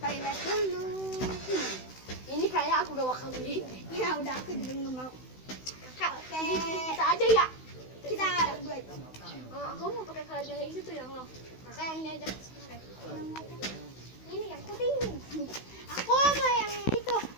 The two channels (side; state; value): right; late; 16 ms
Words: toilet dulu. Ini kayak aku gak bakal beli. Ya udah, aku juga nggak mau. Kak, Oke. kita aja ya. Kita berdua itu. Aku mau pakai keranjang yang itu yang lo. Kakak yang ini aja. Ini yang putih. Aku mau yang itu.